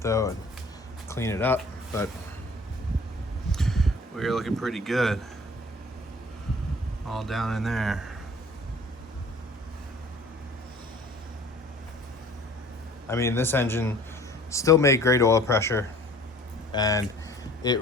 though and clean it up, but we're looking pretty good. All down in there. I mean, this engine still made great oil pressure, and it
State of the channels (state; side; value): normal; both; correlation 0.50